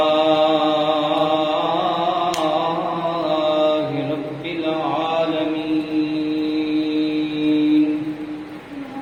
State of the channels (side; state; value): both; identical; correlation 1.00